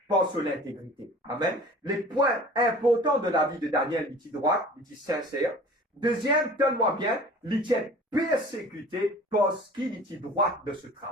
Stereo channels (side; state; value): both; normal; correlation 0.44